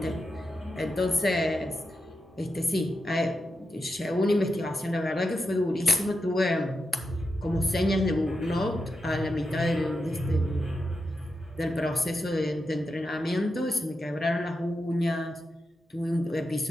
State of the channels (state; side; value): normal; both; correlation 0.87